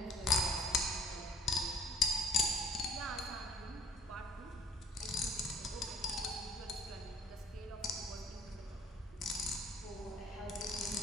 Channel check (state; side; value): normal; both; correlation 0.55